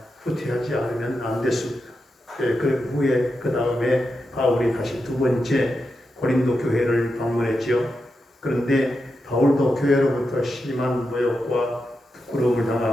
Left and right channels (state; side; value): normal; both; correlation 0.87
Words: 후퇴하지 않으면 안 됐습니다. 그 후에 그 다음에 바울이 다시 두 번째 고린도 교회를 방문했지요. 그런데 바울도 교회로부터 심한 모욕과 부끄러움을